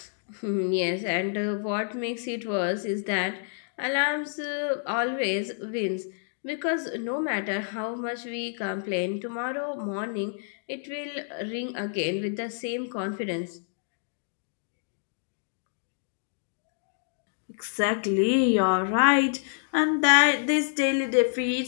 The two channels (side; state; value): right; silent; digital silence